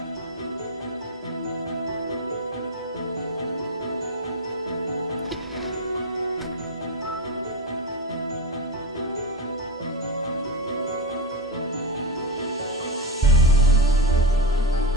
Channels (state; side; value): normal; both; correlation 0.17